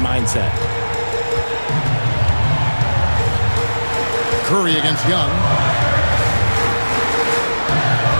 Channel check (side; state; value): both; inverted; correlation -1.00